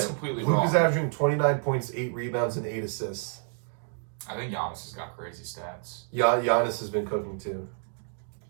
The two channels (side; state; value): left; silent; digital silence